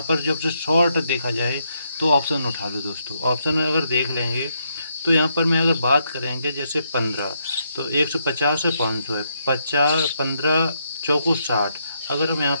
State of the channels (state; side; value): inverted; both; correlation -0.78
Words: पर जब से शॉर्ट देखा जाए तो ऑप्शन उठा लो दोस्तों। ऑप्शन में अगर देख लेंगे तो यहाँ पर मैं अगर बात करेंगे जैसे 15, तो 150 है, 500 है, 50, 15 चौको 60। अगर हम यहाँ